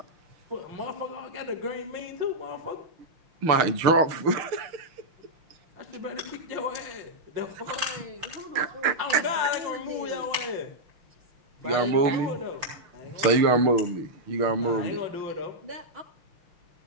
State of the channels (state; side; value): late; left; 6.6 ms